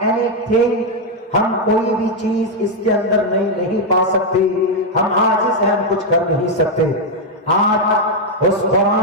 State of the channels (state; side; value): normal; both; correlation 0.01